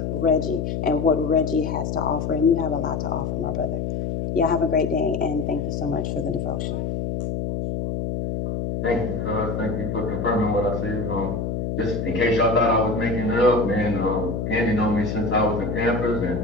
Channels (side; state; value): left; noise; hum, 2 dB below the sound